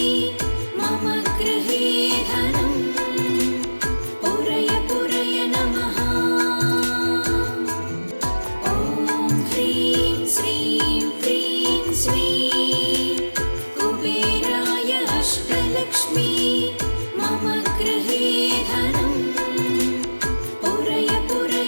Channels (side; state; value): both; inverted; correlation -1.00